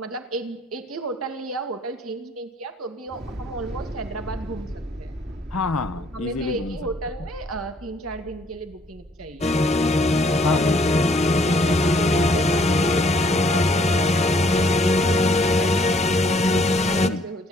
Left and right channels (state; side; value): normal; both; correlation 0.63